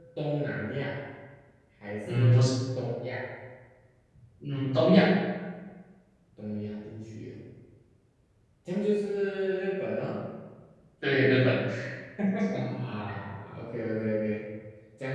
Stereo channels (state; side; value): identical; both; correlation 1.00